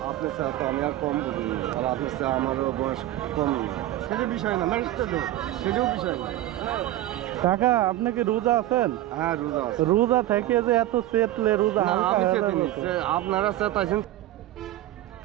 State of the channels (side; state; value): left; quieter; 14.6 dB